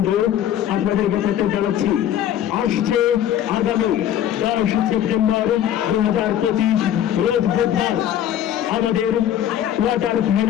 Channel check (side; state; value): right; quieter; 10.8 dB